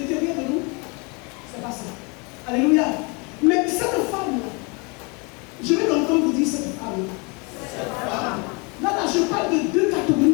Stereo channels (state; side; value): quieter; right; 31.0 dB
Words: de nous, c'est pas ça. Alléluia. Mais cette femme-là, je vais l'entendre. entendre vous dire cette femme. Là, je parle de deux